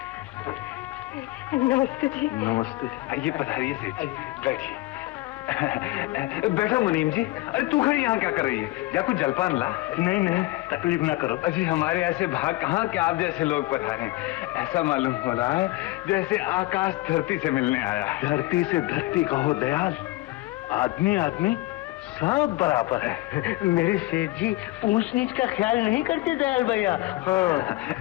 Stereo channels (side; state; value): right; quieter; 19.0 dB